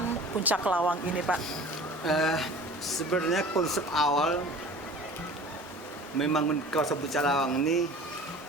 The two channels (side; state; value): both; normal; correlation 0.42